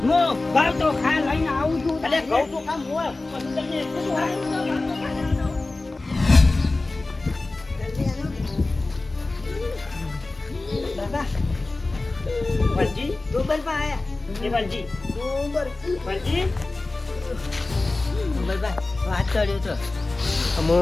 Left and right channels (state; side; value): quieter; right; 3.2 dB